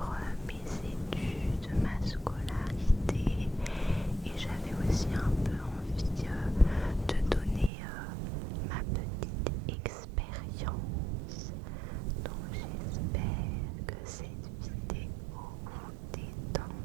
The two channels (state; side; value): drops out; left; at 7.7 s